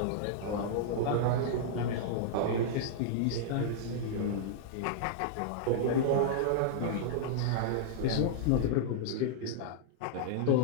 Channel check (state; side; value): different; both; correlation -0.01